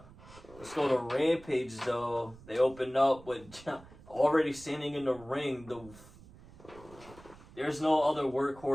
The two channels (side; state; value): right; noise; rumble, 21 dB below the sound